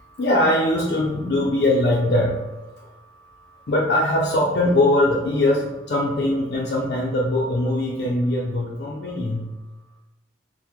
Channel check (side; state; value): both; normal; correlation 0.43